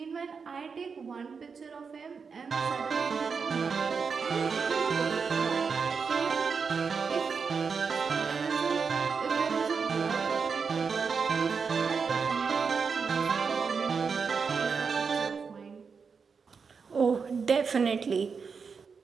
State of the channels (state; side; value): quieter; left; 5.5 dB